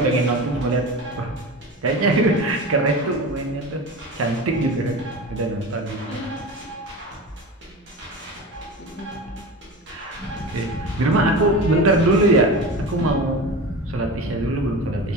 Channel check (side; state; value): both; normal; correlation 0.29